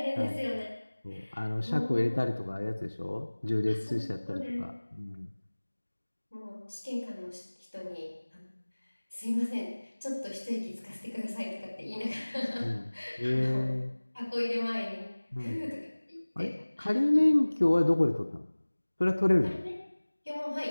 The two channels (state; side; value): inverted; both; correlation -1.00